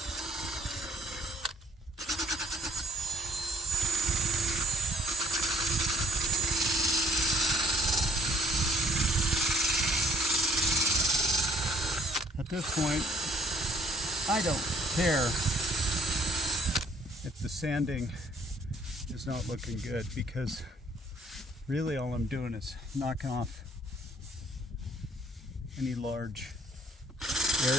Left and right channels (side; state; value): both; normal; correlation 0.62